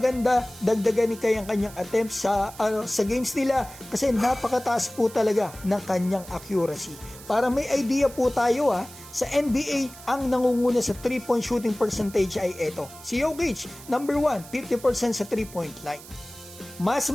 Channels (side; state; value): right; noise; hiss, 17 dB below the sound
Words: dagdagan ni Kai ang kanyang attempts sa games nila kasi napakataas po talaga ng kanyang accuracy. Para may idea po tayo sa NBA, ang nangunguna sa 3-point shooting percentage ay ito. Si Jokic, number 1, 50% sa 3-point line. Mas